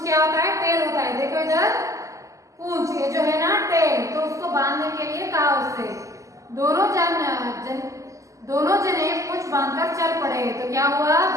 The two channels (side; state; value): left; late; 0.16 ms